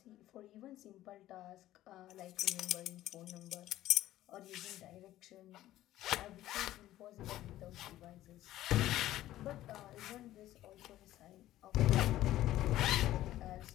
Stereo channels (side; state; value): right; quieter; 14.4 dB